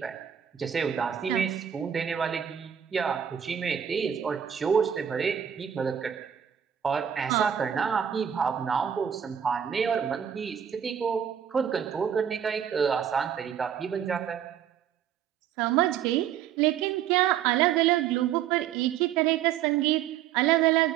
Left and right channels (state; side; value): quieter; left; 9.1 dB